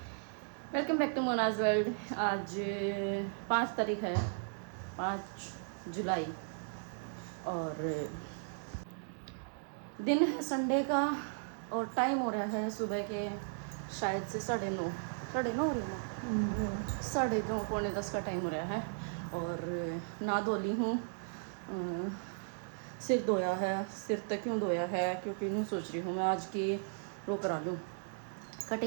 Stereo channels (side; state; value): left; silent; digital silence